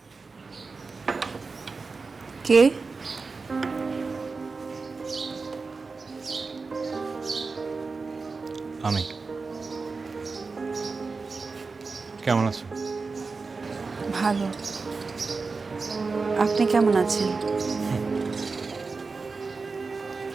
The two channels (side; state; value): left; quieter; 4.3 dB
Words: কে? আমি। কেমন আছো? ভালো। আপনি কেমন আছেন?